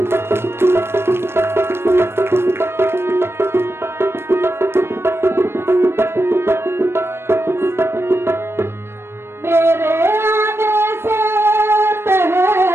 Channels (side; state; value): left; late; 0.12 ms